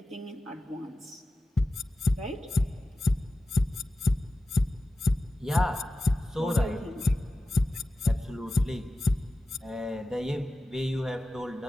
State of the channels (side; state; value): both; normal; correlation 0.94